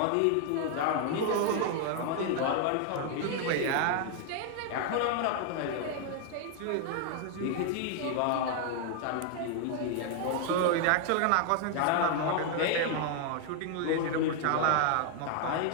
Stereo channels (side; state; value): both; different; correlation 0.00